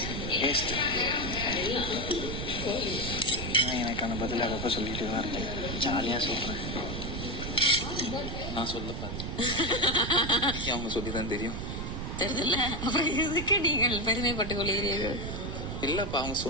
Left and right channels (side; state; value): right; noise; rumble, 5 dB below the sound